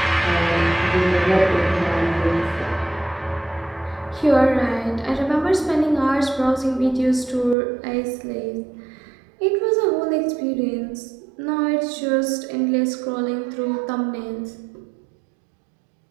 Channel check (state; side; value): drops out; left; at 7.6 s